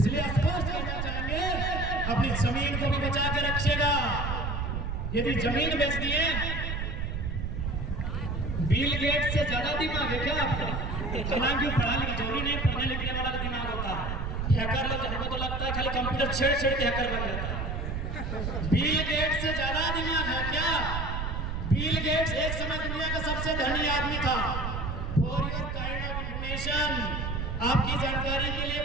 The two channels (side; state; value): right; noise; rumble, 3 dB below the sound